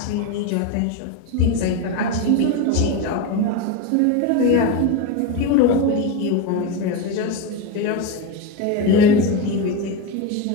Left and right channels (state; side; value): different; both; correlation 0.05